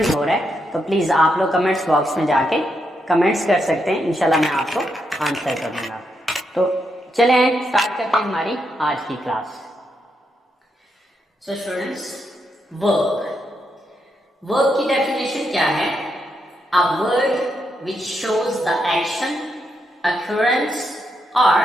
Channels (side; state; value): both; normal; correlation 0.81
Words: हो रहा है तो प्लीज आप लोग कमेंट्स बॉक्स में जाके कमेंट्स कर सकते हैं, इंशाल्लाह मैं आपको आंसर कर दूंगा। तो चलें स्टार्ट करते हैं हमारी आज की क्लास। सो स्टूडेंट्स, वर्ब की डेफिनेशन क्या है? A word which shows the action, occurrence और